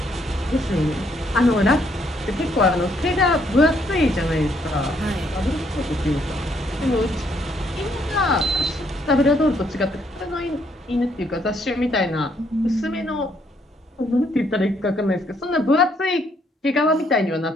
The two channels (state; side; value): normal; both; correlation 0.70